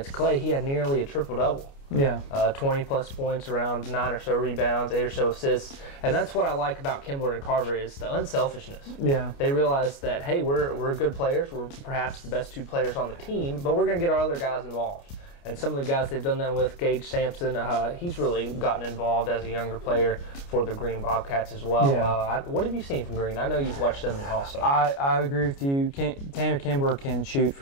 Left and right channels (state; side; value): late; right; 29 ms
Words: Clay. He had nearly a triple-double. 20+ points, around 9 or so rebounds, 8 or so assists, and that's what I like about Kimbler and Carver is the unselfishness. They realize that, hey, we're good players, we're perhaps the best 2 players on the team, but we're going to get our other guys involved. And some of the guys they've done that with, Gage Sampson, he's really gotten involved as a younger player for the Green Bobcats as well. Yeah. What have you seen from Green? I know you've watched them also. I agree with you. Tanner Kimber can shoot